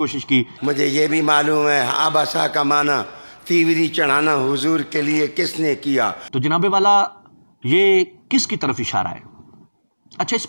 کی، مجھے یہ بھی معلوم ہے آباسا کا معنی تیوری چڑھانا حضور کے لیے کس نے کیا؟ تو جناب والا یہ کس کی طرف اشارہ ہے؟ اچھا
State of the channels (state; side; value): inverted; both; correlation -1.00